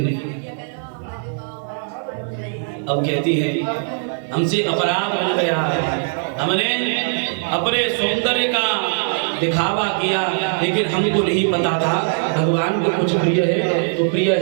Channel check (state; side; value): silent; left; digital silence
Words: अब कहती है, हमसे अपराध हो गया है, हमने अपने सौंदर्य का दिखावा किया, लेकिन हमको नहीं पता था भगवान को कुछ प्रिय है, तो प्रिय